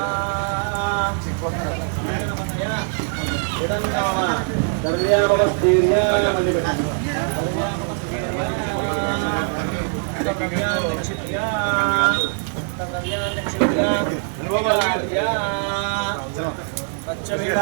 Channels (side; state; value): left; silent; 55 dB below the other